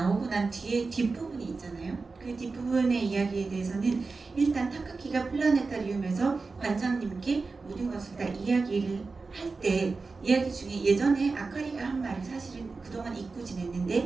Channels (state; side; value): quieter; left; 4.1 dB